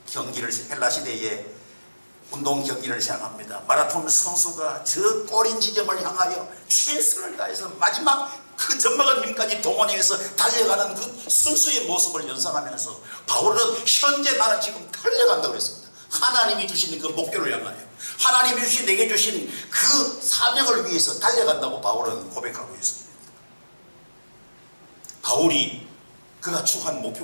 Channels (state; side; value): inverted; both; correlation -1.00